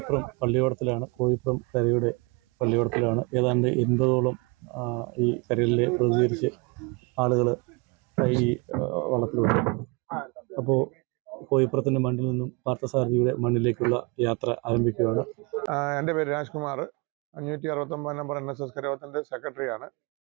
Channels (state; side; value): quieter; left; 30.1 dB